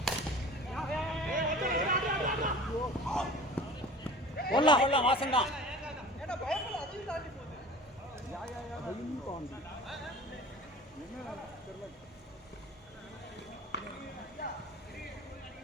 ஒல்லாம் வாசன் தான்.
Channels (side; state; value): both; normal; correlation 0.41